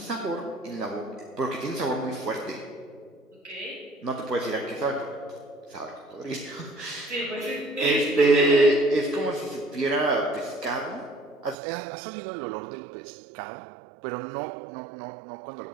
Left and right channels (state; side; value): drops out; left; at 11.6 s